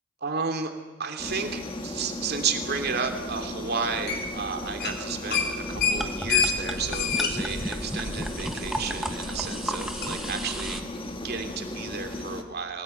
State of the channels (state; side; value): normal; both; correlation 0.20